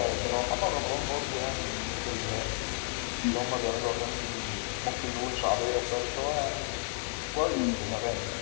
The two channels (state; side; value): silent; right; 57 dB below the other